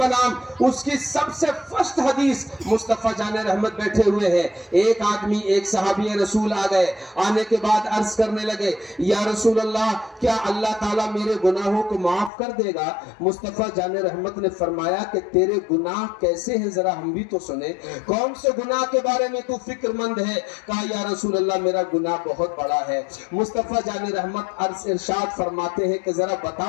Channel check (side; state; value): right; drops out; at 12.3 s